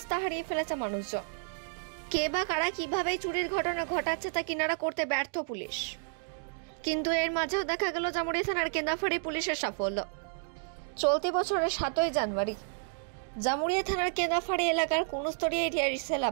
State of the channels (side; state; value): left; silent; digital silence